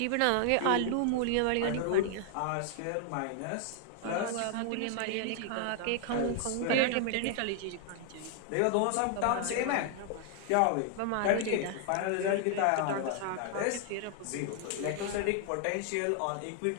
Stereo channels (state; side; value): different; both; correlation 0.00